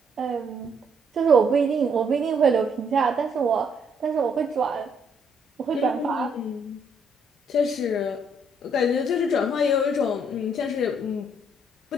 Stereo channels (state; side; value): normal; both; correlation 0.70